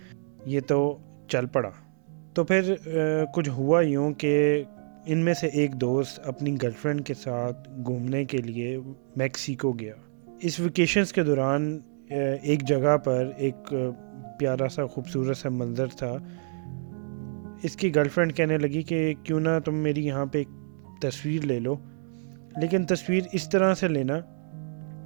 یہ تو چل پڑا۔ تو پھر کچھ ہوا یوں کہ ان میں سے ایک دوست اپنی گرل فرینڈ کے ساتھ گھومنے کے لیے میکسیکو گیا۔ اس ویکیشنز کے دوران ایک جگہ پر ایک پیارا سا خوبصورت سا منظر تھا۔ اس کی گرل فرینڈ کہنے لگی کہ کیوں نہ تم میری یہاں پہ ایک تصویر لے لو، لیکن تصویر اس طرح سے لینا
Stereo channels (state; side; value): silent; left; digital silence